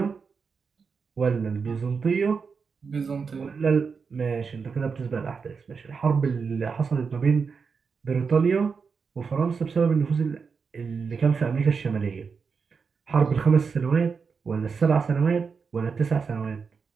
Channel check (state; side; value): quieter; left; 5.5 dB